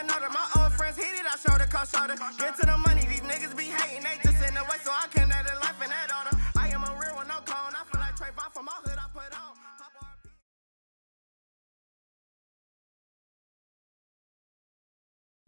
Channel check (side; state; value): both; inverted; correlation -1.00